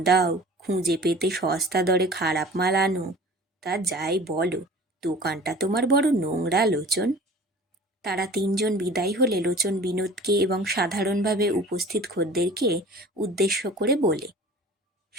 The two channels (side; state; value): both; normal; correlation 0.43